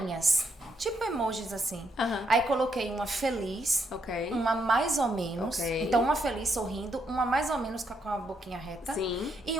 tipo emojis assim. Aí coloquei uma feliz, uma mais ou menos. Então, uma feliz sorrindo, uma mais ou menos com a boquinha reta. Sim. E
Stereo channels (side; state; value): both; normal; correlation 0.78